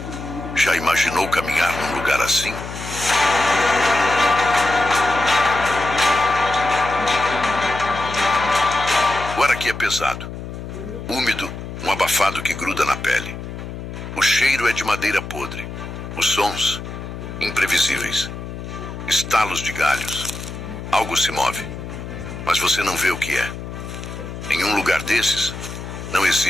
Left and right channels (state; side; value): noise; left; hum, 9 dB below the sound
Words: Já imaginou caminhar num lugar assim? O ar aqui é pesado, úmido, um abafado que gruda na pele. O cheiro é de madeira podre. Os sons, imprevisíveis. Estalos de galhos. Algo se move, mas você não vê o que é. Em um lugar desses, não